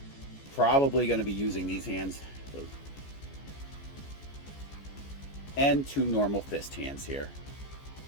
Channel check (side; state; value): right; late; 14 ms